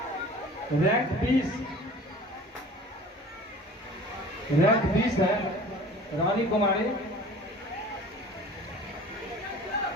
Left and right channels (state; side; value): normal; both; correlation 0.44